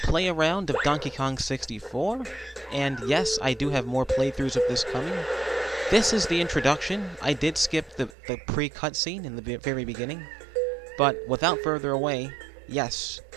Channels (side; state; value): left; drops out; at 8.2 s